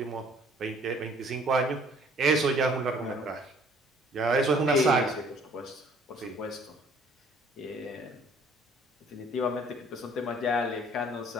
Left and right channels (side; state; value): both; normal; correlation 0.58